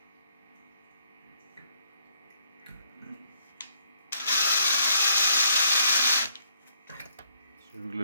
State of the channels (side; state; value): both; inverted; correlation -0.69